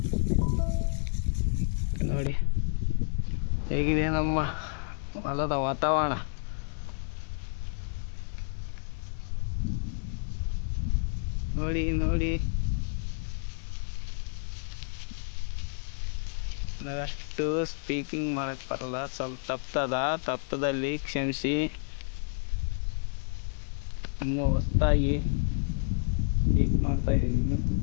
ನೋಡಿ ಹೇಗಿದೆ ನಮ್ಮ ಹೊಲದ ವಾತಾವರಣ. ನೋಡಿ ನೋಡಿ, ನಾವಷ್ಟು ಸ್ಪೀಕಿಂಗ್ ಮಾಡಕ್ಕೆ ಬರಲ್ಲ, ಸ್ವಲ್ಪ ತಪ್ಪದಲ್ಲಿ ಕ್ಷಮಿಸಿ. ಇನ್ನೂ ಹೊಸ್ದಾಗಿ ಸ್ಪೀಕ್ ಮಾಡ್ತಾಯಿದ್ದೀನಿ,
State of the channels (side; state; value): right; silent; digital silence